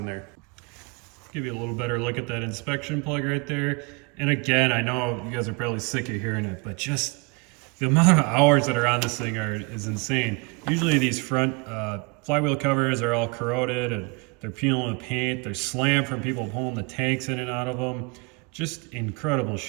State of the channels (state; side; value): quieter; left; 30.0 dB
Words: there. Give you a little better look at that inspection plug right there. And again, I know you guys are probably sick of hearing it, but just the amount of hours that are on this thing is insane. Usually these front flywheel covers are all corroded and they're peeling with paint. They're slammed from people pulling the tanks in and out of them. Just incredible